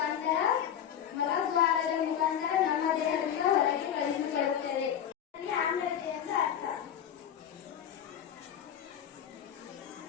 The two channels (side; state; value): right; quieter; 9.4 dB